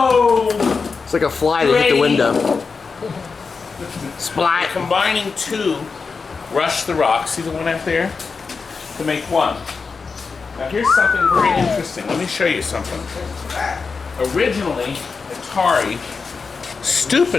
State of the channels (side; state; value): right; quieter; 4.9 dB